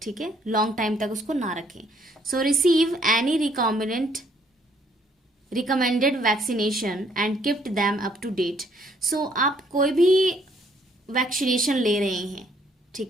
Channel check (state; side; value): normal; both; correlation 0.66